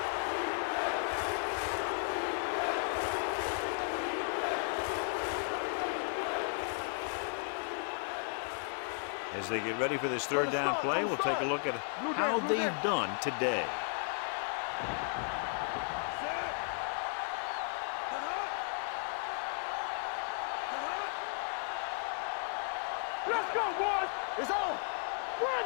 As they get ready for this third down play, we'll take a look at how they've done today. Let's go, boys. It's on. Run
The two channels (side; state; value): right; silent; 54 dB below the other